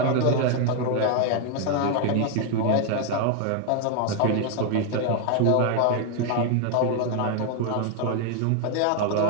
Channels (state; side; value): different; both; correlation 0.00